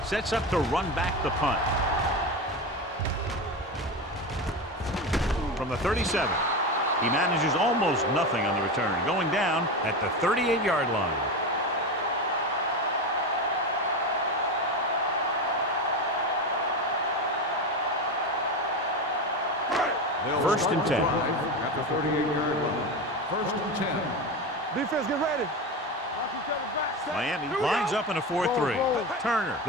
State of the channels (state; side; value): normal; both; correlation 0.21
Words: sets up to run back the punt. From the 37, he manages almost nothing on the return, going down at the 38-yard line. First and 10. At the 38-yard line. First and 10. Defense, get ready. Miami lines up in a 4-3. Turner,